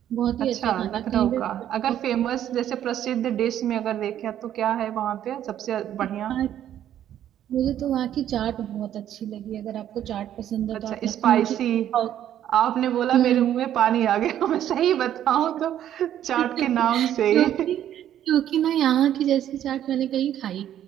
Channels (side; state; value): left; quieter; 11.1 dB